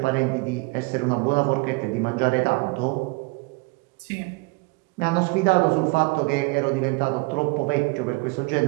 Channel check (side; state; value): left; quieter; 27.9 dB